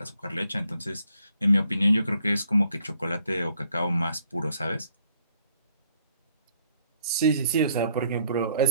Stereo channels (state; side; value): inverted; both; correlation -0.68